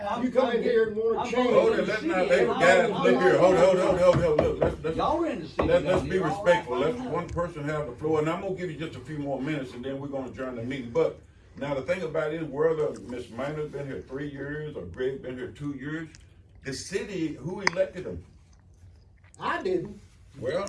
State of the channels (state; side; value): identical; both; correlation 1.00